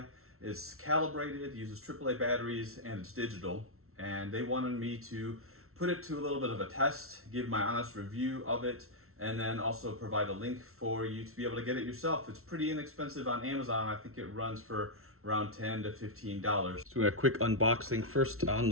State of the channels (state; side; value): late; left; 0.62 ms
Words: It's calibrated, uses AAA batteries, and it's digital. And they wanted me to put it to a little bit of a test, give my honest review of it, and then also provide a link for you to be able to get it yourself. It's pretty inexpensive on Amazon. I think it runs for around $10 to $15. So a quick unboxing. First, on